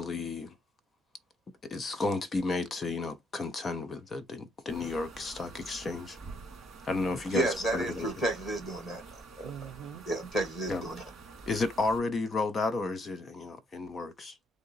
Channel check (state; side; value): normal; both; correlation 0.72